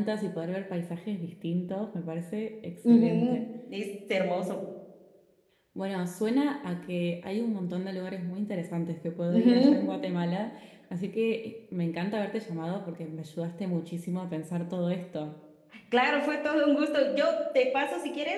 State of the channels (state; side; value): identical; both; correlation 1.00